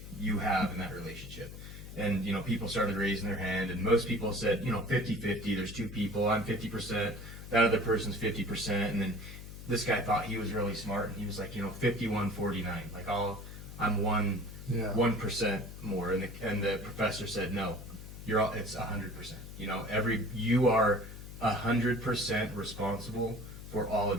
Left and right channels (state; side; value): noise; left; hum, 12 dB below the sound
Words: you have in that relationship? And people started raising their hand, and most people said 50-50. There's two people, I'm 50%. That other person's 50%, and then this guy thought he was really smart, and he was like, 51-49. Like I'm 1% more, and the professor said, no, it's 100%. You are 100% responsible for all